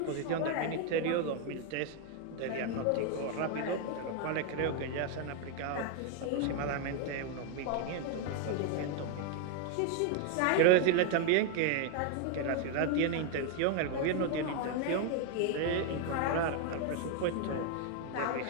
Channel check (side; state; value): both; different; correlation 0.01